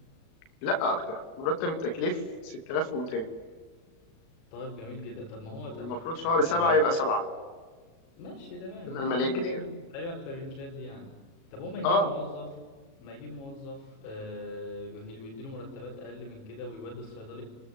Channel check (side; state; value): right; late; 36 ms